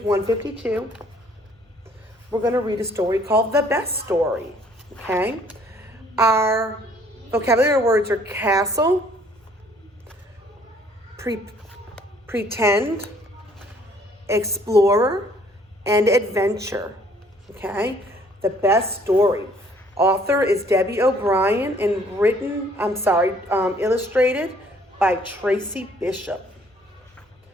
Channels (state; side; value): normal; both; correlation 0.60